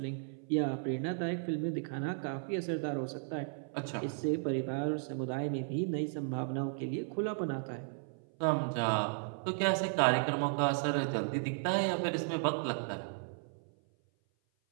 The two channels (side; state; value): left; silent; 55 dB below the other